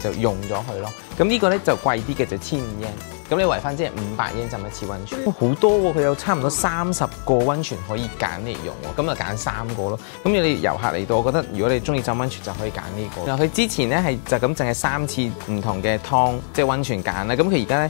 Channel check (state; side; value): silent; right; digital silence